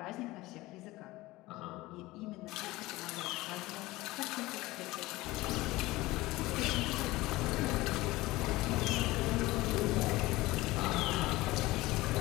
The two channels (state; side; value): quieter; right; 19.3 dB